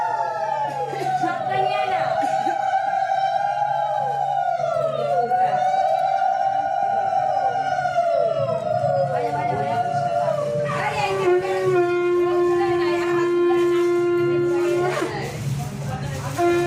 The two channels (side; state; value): both; identical; correlation 1.00